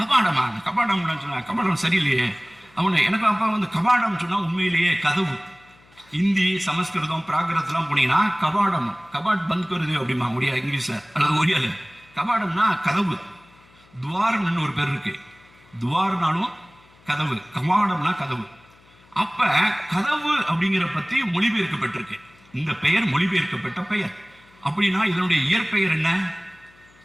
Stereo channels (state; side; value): noise; left; hum, 29 dB below the sound